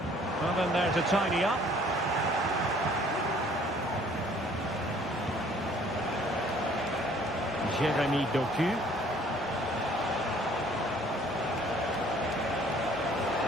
Well, then there to tidy up. Jérémy Doku.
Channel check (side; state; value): both; normal; correlation 0.57